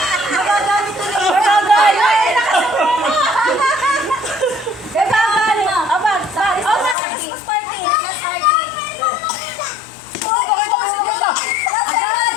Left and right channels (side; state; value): right; drops out; at 7.0 s